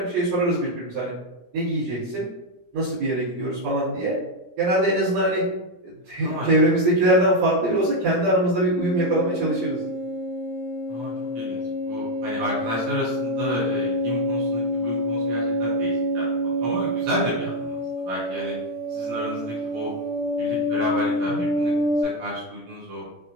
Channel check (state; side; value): late; left; 17 ms